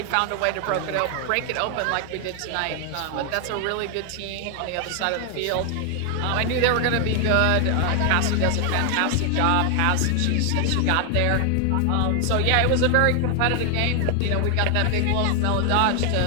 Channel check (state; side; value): different; both; correlation 0.00